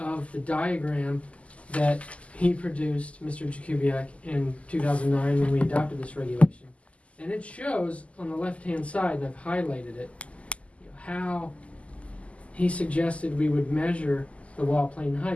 the diagram that he produced, Mr. Jakubiec, in 2009 when we adopted this regulation. And it shows on the left-hand side, and I've highlighted it, how he suggested we would measure the wall plane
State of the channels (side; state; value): right; late; 0.063 ms